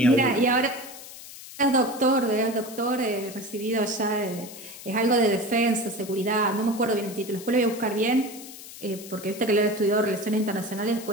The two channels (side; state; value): left; noise; hiss, 15 dB below the sound